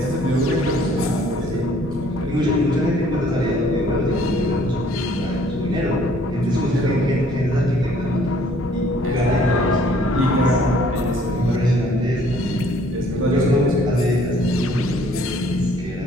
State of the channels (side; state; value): both; normal; correlation 0.59